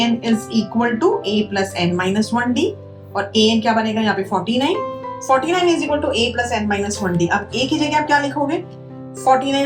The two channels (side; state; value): both; identical; correlation 1.00